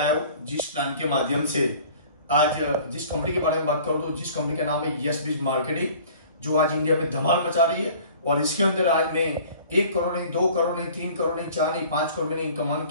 हूँ, जिस प्लान के माध्यम से आज जिस कंपनी के बारे में बात करूँ तो जिस कंपनी का नाम है यस बीज मार्केटिंग, जो आज इंडिया में धमाल मचा रही है। और इसके अंदर आज मैं 1 करोड़ नहीं, 2 करोड़ नहीं, 3 करोड़ नहीं, 4 नहीं, 5 करोड़ मैंने इनकम अर्न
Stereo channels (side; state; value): both; inverted; correlation -0.48